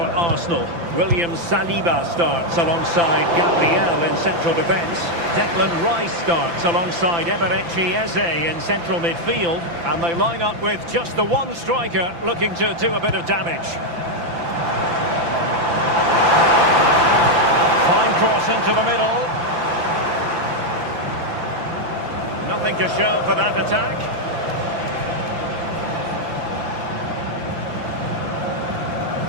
William Saliba starts alongside Gabriel in central defence. Declan Rice starts alongside Eberechi Eze in central midfield. And they line up with just the one striker looking to do a bit of damage. Fine cross into the middle. Nothing to show for that attack.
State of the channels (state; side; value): late; left; 5.9 ms